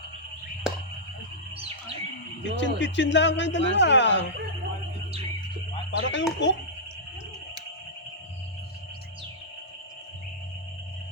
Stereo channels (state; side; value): normal; both; correlation -0.12